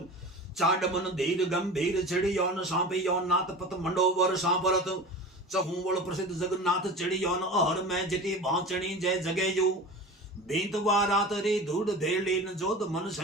चाड मन धीर गंभीर चिड़ियोन सांपियोन नाथ पत मंडोवर सांपरत चहूवल प्रसिद्ध जगन्नाथ चिड़ियोन अहर में जिति भाचणी जय जगेयु भीत वारात रे धूड़ धेलीन जोध मन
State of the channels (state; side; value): normal; both; correlation 0.34